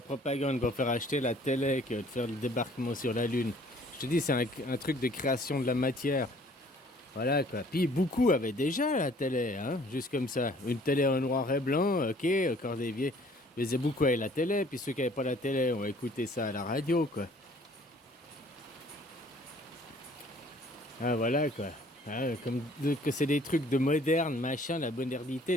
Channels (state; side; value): normal; both; correlation 0.56